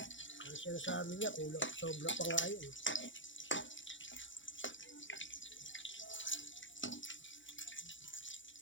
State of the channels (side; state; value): right; late; 0.56 ms